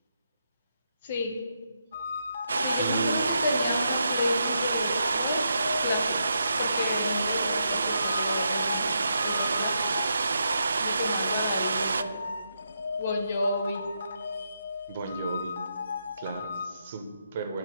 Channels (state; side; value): inverted; both; correlation -0.81